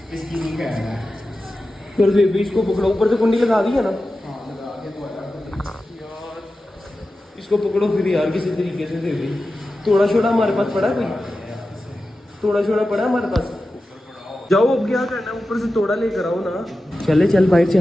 इसकी नहीं कह रहा है। फिर बेबी इसको पकड़ो, ऊपर से कुंडी लगा दी है ना यार। इसको पकड़ो फिर यार किसी तरीके से। बेबी थोड़ा छोड़ा हमारे पास पड़ा, कोई थोड़ा छोड़ा पड़ा हमारे पास। जाओ अब क्या करना, ऊपर से तोड़ा लेकर आओ ना। चले चल बाहर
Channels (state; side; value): normal; both; correlation 0.93